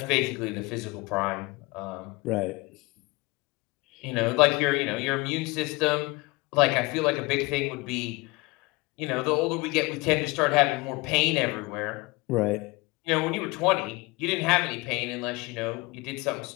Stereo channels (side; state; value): right; quieter; 23.9 dB